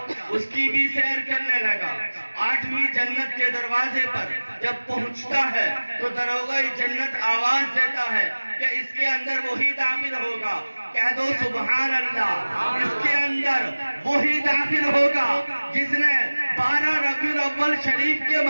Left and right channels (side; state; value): both; inverted; correlation -1.00